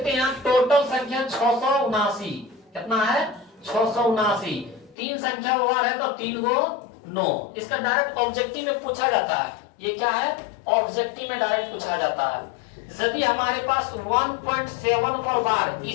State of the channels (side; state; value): right; drops out; at 5.0 s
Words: हैं, टोटल संख्या 679। कितना है? 679। 3 संख्या वार है तो 3×9। इसका डायरेक्ट ऑब्जेक्टिव में पूछा जाता है। ये क्या है? ऑब्जेक्टिव में डायरेक्ट पूछा जाता है। यदि हमारे पास 1.7 पर वार